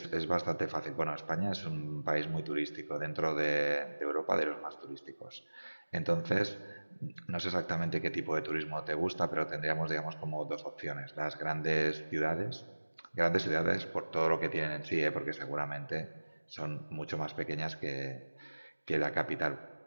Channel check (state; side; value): inverted; both; correlation -1.00